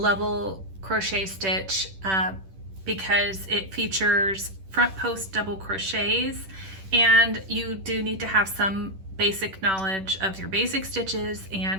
crochet stitch because it features front post double crochets, and you do need to have some basic knowledge of your basic stitches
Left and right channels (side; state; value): left; late; 10 ms